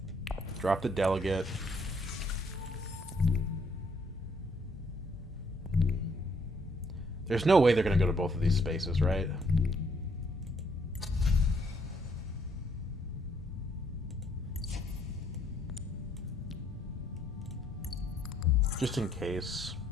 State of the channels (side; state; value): both; normal; correlation 0.68